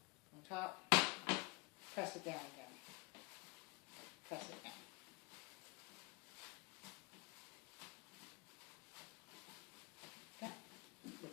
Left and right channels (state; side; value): quieter; right; 27.5 dB